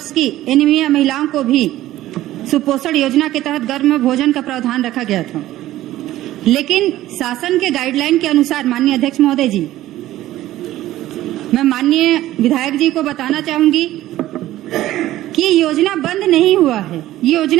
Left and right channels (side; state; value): left; quieter; 14.8 dB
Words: की एनीमिया महिलाओं को भी सुपोषण योजना के तहत गर्म भोजन का प्रावधान रखा गया था। लेकिन शासन के गाइडलाइन के अनुसार माननीय अध्यक्ष महोदय जी, मैं माननीय विधायक जी को बताना चाहूंगी कि योजना बंद नहीं हुआ है, ये